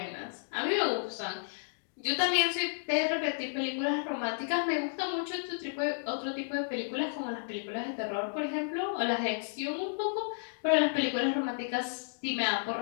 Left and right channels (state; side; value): silent; right; digital silence